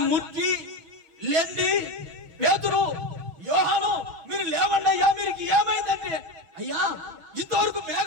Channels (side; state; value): left; late; 6.0 ms